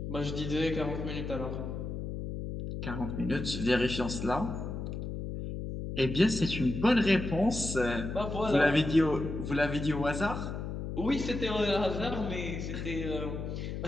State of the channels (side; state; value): left; noise; hum, 5 dB below the sound